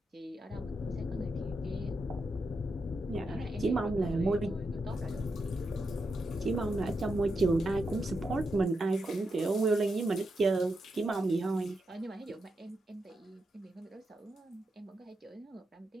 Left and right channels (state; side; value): normal; both; correlation 0.85